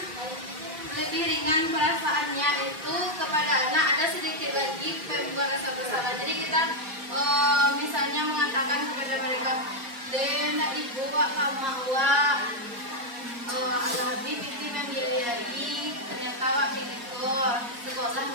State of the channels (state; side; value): late; left; 4.2 ms